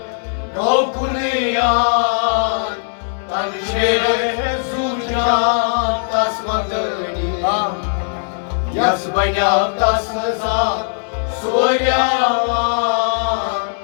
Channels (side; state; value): right; silent; digital silence